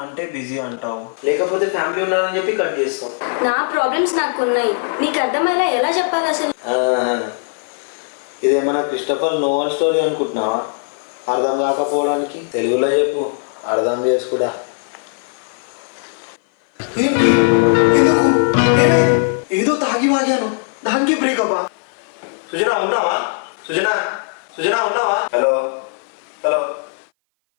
అంటే బిజీ అంటావు, లేకపోతే ఫ్యామిలీ ఉన్నారని చెప్పి కట్ చేస్తావు. నా ప్రాబ్లమ్స్ నాకు ఉన్నాయి, నీకు అర్థమయ్యేలా ఎలా చెప్పాలి అసలు? ఇదేమన్నా క్రిస్టఫర్ నోవెల్ స్టోరీ అనుకుంటున్నావా? అర్థం కాకపోవడానికి తెలుగులో చెప్పు, అర్థం చేసుకుడా. ఏదో తాగి వాగాను, దానికి బ్రేకప్. సుజనా ఉన్నావా? సుజనా సుజనా ఉన్నావా? Hello hello.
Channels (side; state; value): right; silent; 57 dB below the other